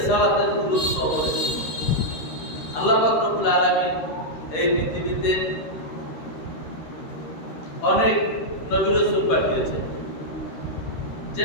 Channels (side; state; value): right; late; 13 ms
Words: গুরুত্ব অপরিসীম। আল্লাহ পাক রব্বুল আলামিন এই পৃথিবীতে অনেক নবী রাসূল পাঠিয়েছেন,